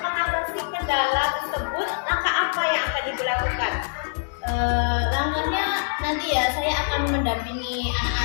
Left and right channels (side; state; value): right; silent; 62 dB below the other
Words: kendala tersebut, langkah apa yang akan Ibu lakukan? Langkahnya nanti ya saya akan mendampingi